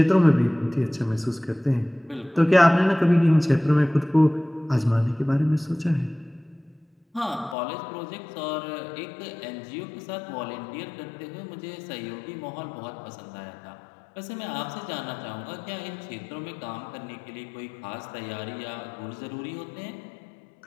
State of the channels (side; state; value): right; drops out; at 7.6 s